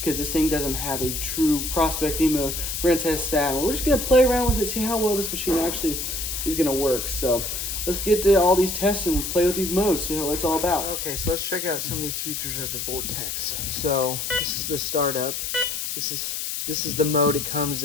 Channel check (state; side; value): noise; left; hiss, 3 dB below the sound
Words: this thing doesn't have a true prospecting mode. We're going to test that. We're just going to play around with it, see how well this machine actually is going to work. So let's get to all these tests and play with these modes, see what it's all about. Okay, so let's check out some of these features of the Vortex. So this is the startup. This is the mode it comes